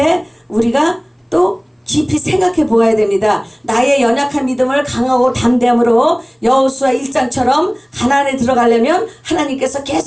우리가 또 깊이 생각해 보아야 됩니다. 나의 연약한 믿음을 강하고 담대함으로 여호수아 1장처럼 가나안에 들어가려면 하나님께서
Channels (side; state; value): both; identical; correlation 1.00